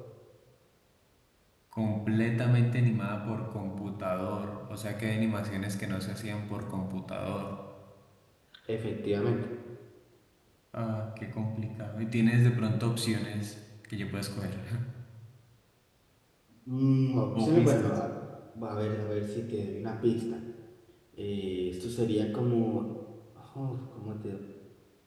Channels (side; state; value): both; identical; correlation 1.00